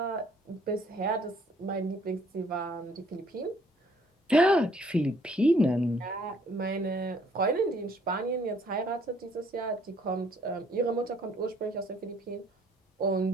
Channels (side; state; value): both; normal; correlation 0.62